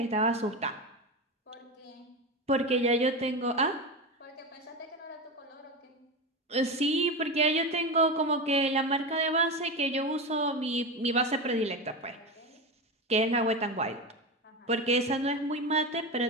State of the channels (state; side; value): normal; both; correlation 0.19